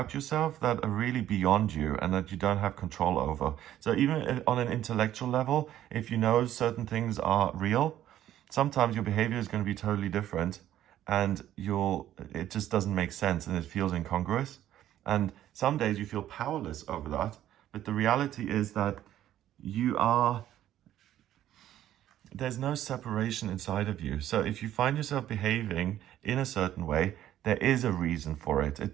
yourself that are really beyond you and that you don't have control over. So even on an intellectual level, if you know certain things are real, sometimes your behavior is going to be totally different, and it just doesn't make sense and it feels incongruous. And some days you feel powerless over that, but the reality is that there's no separation inside of you. So if you find yourself behaving in a certain way, there is a reason for it.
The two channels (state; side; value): quieter; left; 12.3 dB